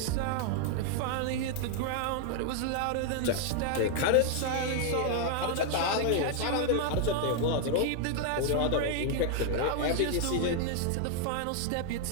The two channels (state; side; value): different; both; correlation 0.00